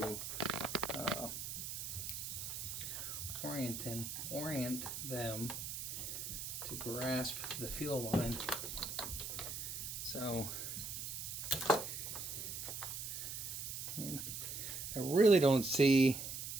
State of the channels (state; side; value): noise; right; hiss, 5 dB below the sound